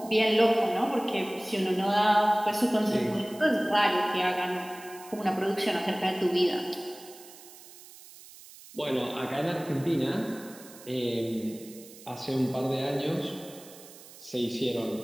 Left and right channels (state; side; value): noise; right; hiss, 19 dB below the sound